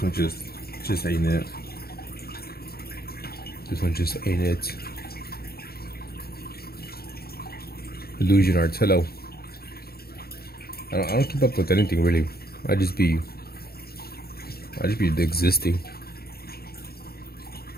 one just ain't it. This one just ain't it. Illusion Arts, hello. I don't keep up with anything really. I just be existing.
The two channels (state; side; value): late; right; 0.45 ms